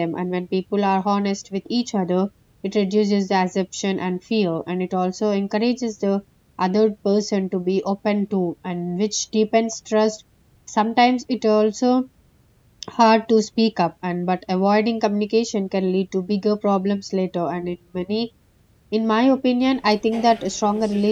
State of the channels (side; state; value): both; identical; correlation 1.00